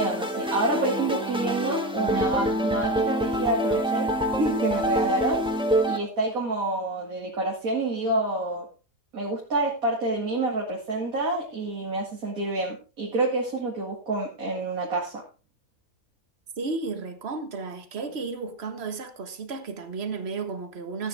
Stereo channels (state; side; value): normal; both; correlation 0.11